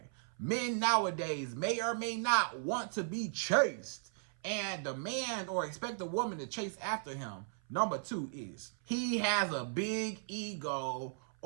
men nowadays may or may not want to be chased and demand or expect a woman to chase after him, number two is he has a big ego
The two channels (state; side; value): silent; left; 53 dB below the other